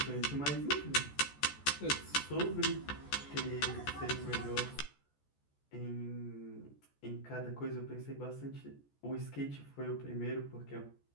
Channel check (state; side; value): late; right; 14 ms